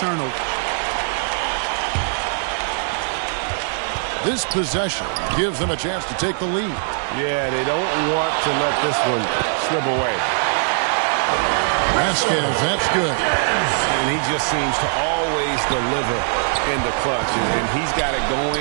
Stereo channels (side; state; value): left; silent; digital silence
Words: This possession gives them a chance to take the lead. Yeah, they don't want to let this one slip away. Vasquez, that's good. And he just seems to always deliver in the clutch, and he's got it